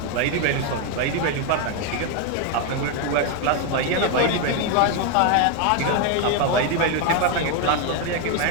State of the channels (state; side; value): different; both; correlation 0.01